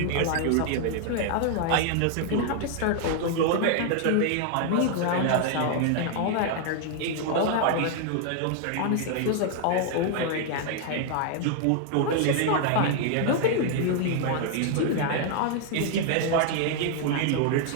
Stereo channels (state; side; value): different; both; correlation 0.00